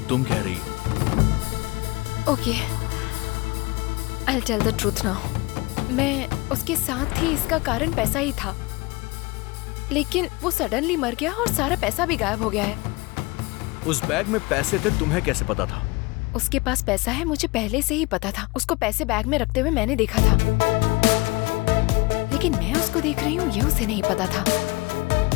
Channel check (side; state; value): right; quieter; 24.6 dB